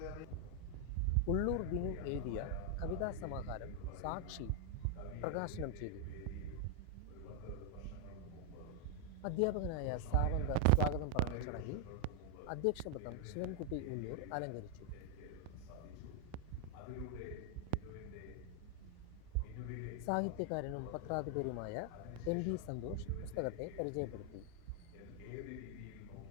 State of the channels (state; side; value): different; both; correlation 0.00